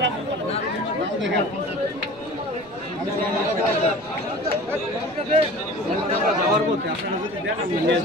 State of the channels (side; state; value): right; noise; rumble, 25 dB below the sound